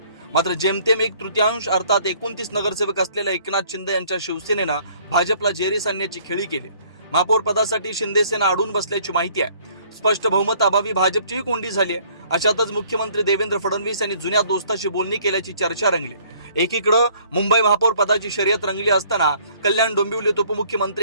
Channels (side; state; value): both; inverted; correlation -0.58